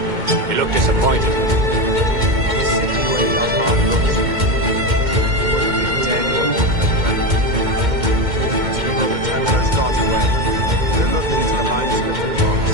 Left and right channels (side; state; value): left; late; 2.1 ms